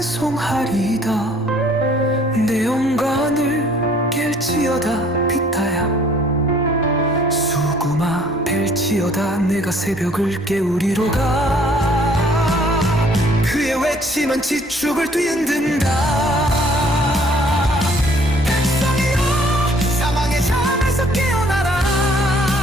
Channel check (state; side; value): normal; both; correlation 0.59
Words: 내 영광을 깰지어다 비타야 수구마 벨지어다 내가 새벽을 깨우리로가. 그의 외침은 지축을 뒤흔든다. 백성이여 사망의 잠에서 깨어나라.